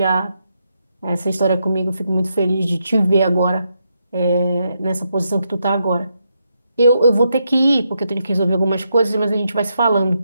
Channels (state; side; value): inverted; both; correlation -0.81